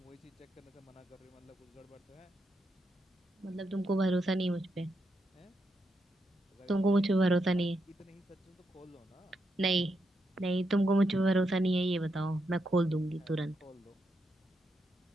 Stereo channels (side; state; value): both; normal; correlation 0.82